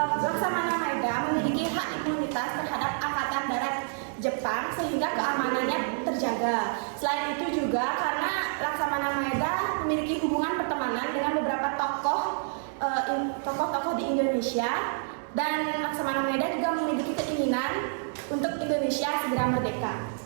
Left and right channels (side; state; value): left; silent; 59 dB below the other